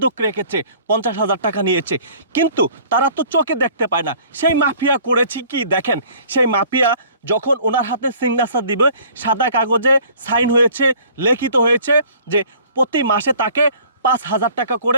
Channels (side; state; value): both; inverted; correlation -0.52